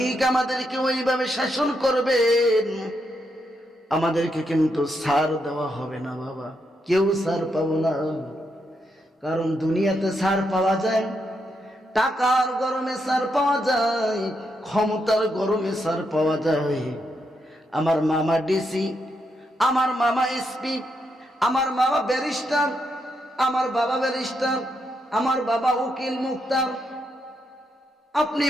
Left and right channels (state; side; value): normal; both; correlation 0.81